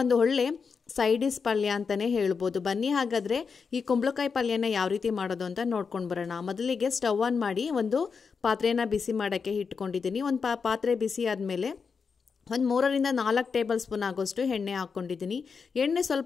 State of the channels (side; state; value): right; quieter; 5.5 dB